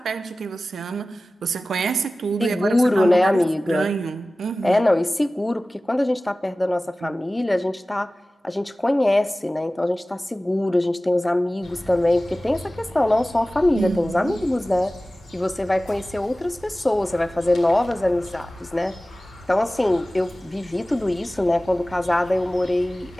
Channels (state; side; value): normal; both; correlation 0.97